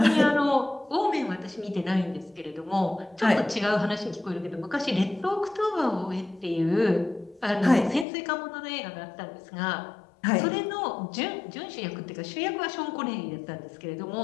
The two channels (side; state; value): right; drops out; at 8.1 s